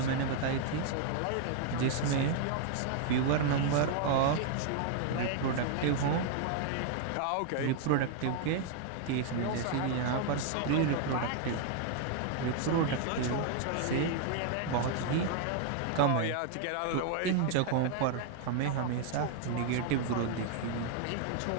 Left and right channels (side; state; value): both; different; correlation 0.00